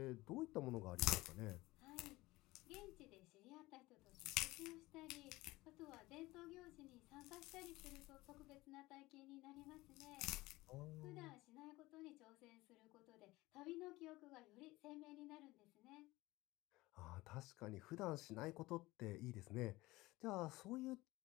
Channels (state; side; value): quieter; right; 19.7 dB